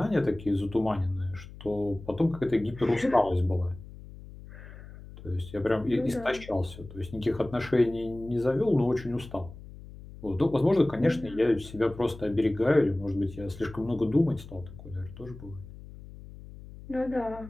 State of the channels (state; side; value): noise; left; hum, 16 dB below the sound